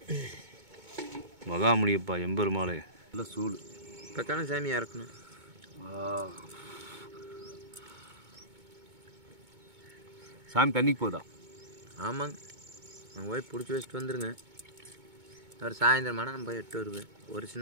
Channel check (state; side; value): late; left; 2.2 ms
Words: மகாமுனியப்பா, எம்பெருமாளே. நல்ல சூடு. இப்போத்தானே சாமியாக இருக்கணும். சாமி தண்ணிக்கு போதா? ஆமாங்க, நான் போய் பிடிச்சி வச்சுட்டு வந்துருங்க. ஒரு சாயந்தரமான நம்ம போய் எட்டு வருவேன். ஒரு